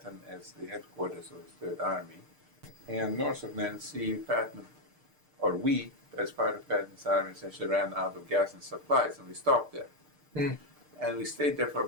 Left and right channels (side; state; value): left; late; 6.6 ms